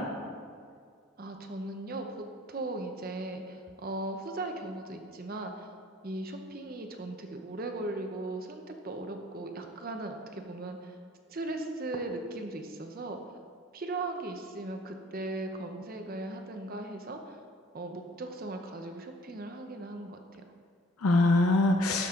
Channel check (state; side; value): normal; both; correlation 0.55